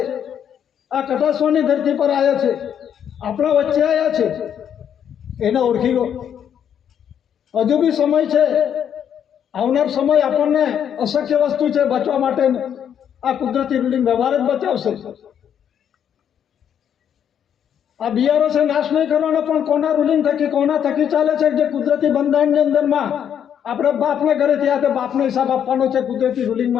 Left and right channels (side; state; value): right; quieter; 8.9 dB